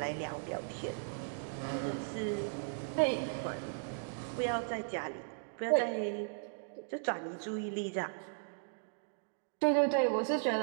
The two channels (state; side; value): silent; left; digital silence